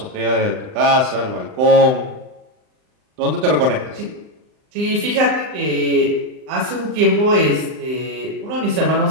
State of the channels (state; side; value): late; left; 39 ms